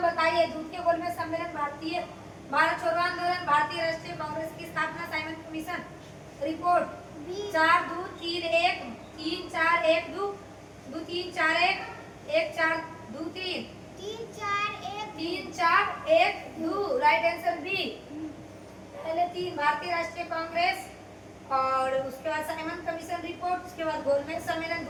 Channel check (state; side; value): identical; both; correlation 1.00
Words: बताइए? द्वितीय गोलमेज सम्मेलन, भारत छोड़ो आंदोलन, भारतीय राष्ट्रीय कांग्रेस की स्थापना, Simon Commission report, 4-2-3-1, 3-4-1-2, 2-3-4-1, 1-4-2-3, 3-4-1-2, right answer B. पहले 3 भारतीय राष्ट्रीय कांग्रेस और उसके बाद साइमन कमीशन रिपोर्ट, उसके बाद गोलमेज सम्मेलन